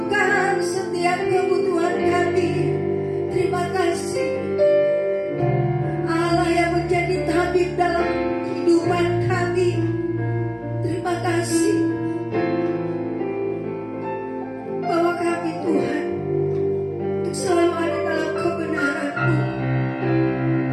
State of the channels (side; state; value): both; identical; correlation 1.00